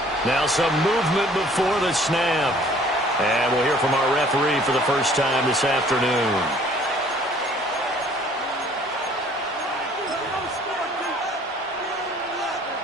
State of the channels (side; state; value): both; normal; correlation 0.56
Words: Now some movement before the snap. And we'll hear from our referee for the first time this afternoon.